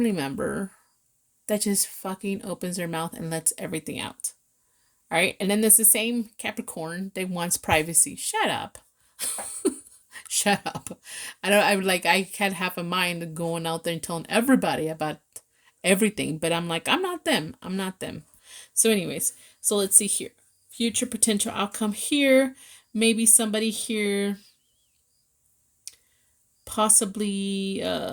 member that just fucking opens their mouth and lets everything out. All right? And then there's the same Capricorn that wants privacy. Shut up. Shut up. I can't have a mind going out there and telling everybody about everything, but I'm like, I'm not them. So anyways, so let's see here. Future potential outcome here. Maybe somebody here possibly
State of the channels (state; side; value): identical; both; correlation 1.00